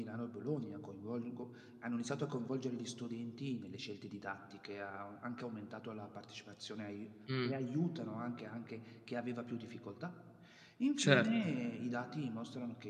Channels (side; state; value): both; identical; correlation 1.00